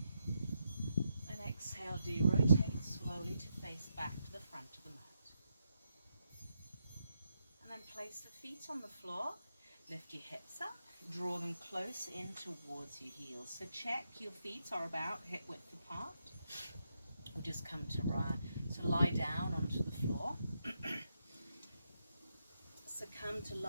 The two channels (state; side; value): inverted; both; correlation -0.83